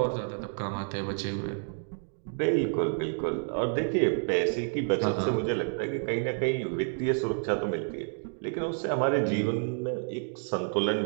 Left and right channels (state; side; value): silent; left; 58 dB below the other